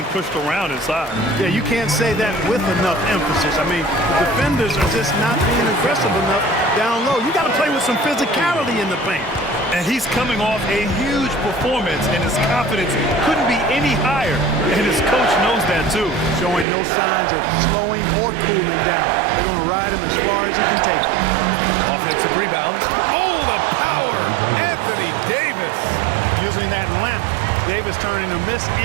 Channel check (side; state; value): left; drops out; at 16.7 s